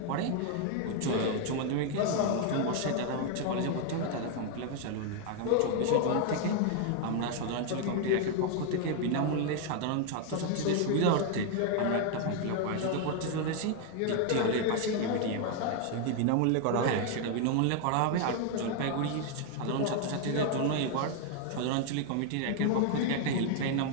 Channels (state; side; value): different; both; correlation 0.00